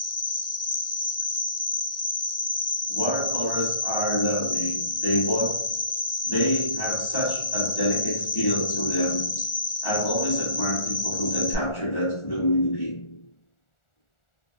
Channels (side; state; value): right; late; 1.4 ms